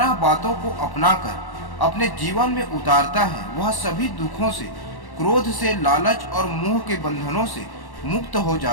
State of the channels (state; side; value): late; right; 1.1 ms